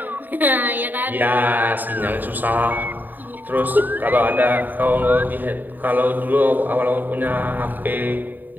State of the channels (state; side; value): late; left; 0.089 ms